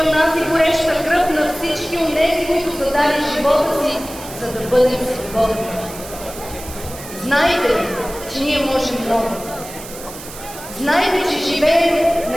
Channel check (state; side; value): noise; right; hiss, 14 dB below the sound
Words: нас и гореща кръв на всички онези, които са дали живота си, за да бъдем свободни. Знайте, че ние можем много. Знайте, че живеем